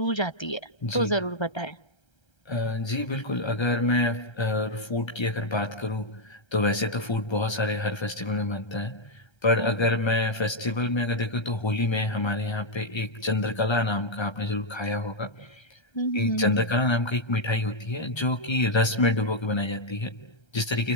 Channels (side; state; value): right; late; 1.3 ms